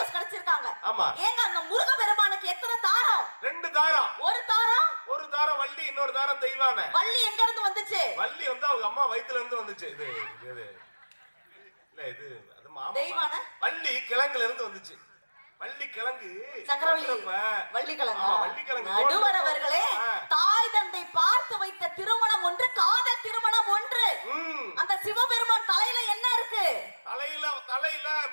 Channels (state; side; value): inverted; both; correlation -1.00